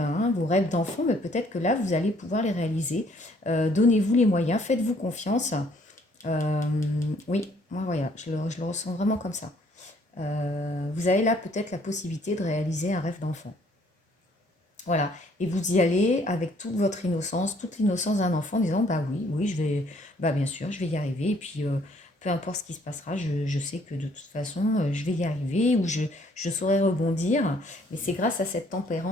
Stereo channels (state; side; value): normal; both; correlation 0.63